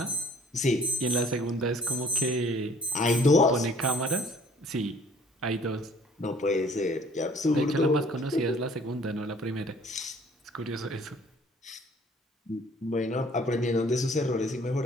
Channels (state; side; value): normal; both; correlation 0.56